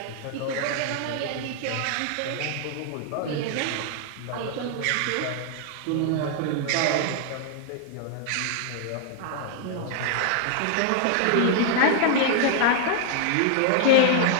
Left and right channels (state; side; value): different; both; correlation -0.01